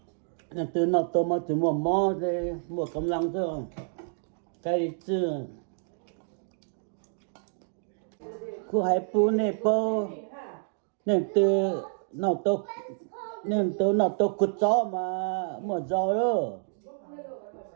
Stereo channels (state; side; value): silent; left; digital silence